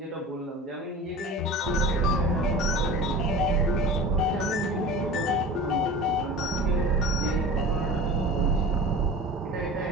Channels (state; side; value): normal; both; correlation 0.35